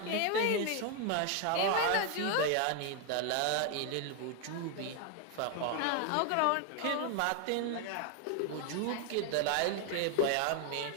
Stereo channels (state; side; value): different; both; correlation 0.01